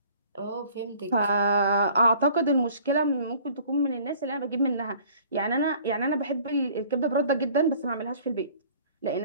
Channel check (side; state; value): both; inverted; correlation -0.52